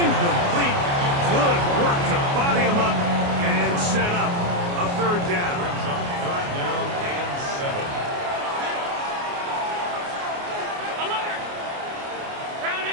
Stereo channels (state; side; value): late; left; 29 ms